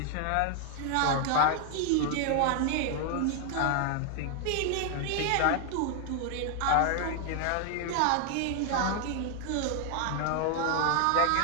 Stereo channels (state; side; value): different; both; correlation 0.00